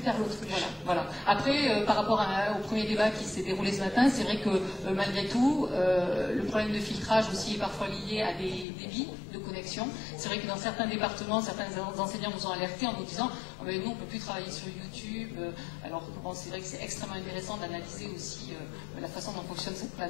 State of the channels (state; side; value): drops out; right; at 8.7 s